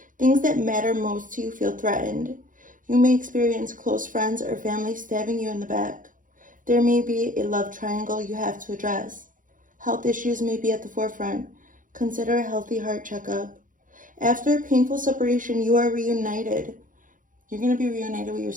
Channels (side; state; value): left; late; 0.38 ms